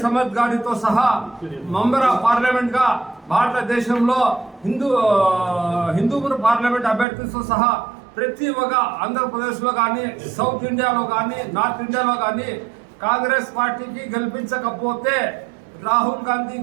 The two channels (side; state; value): left; drops out; at 7.1 s